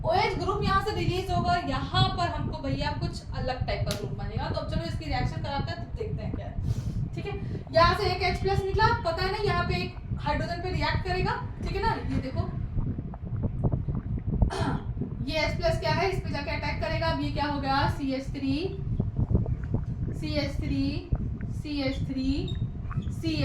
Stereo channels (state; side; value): identical; both; correlation 1.00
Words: OH ग्रुप यहाँ से रिलीज होगा, यहाँ पर हमको भैया कुछ अलग टाइप का ग्रुप बनेगा। तो अब चलो इसकी रिएक्शन कराते हैं, तो देखते हैं क्या है। ठीक है, यहाँ से एक H+ निकला, पता है ना, यहाँ पे एक हाइड्रोजन पे रिएक्ट करेगा। ठीक है ना, ये देखो ये H+ क्या है, इस पे जाके अटैक करेगा। अब ये क्या हो गया,